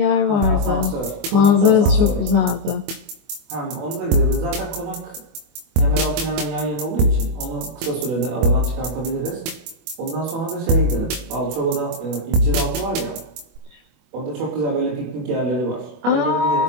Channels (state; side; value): late; left; 24 ms